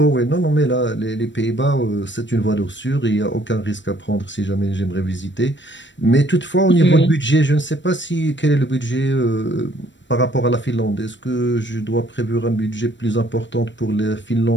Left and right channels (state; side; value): late; right; 0.53 ms